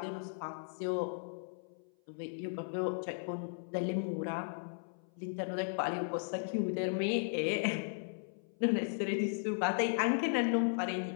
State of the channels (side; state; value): right; silent; 54 dB below the other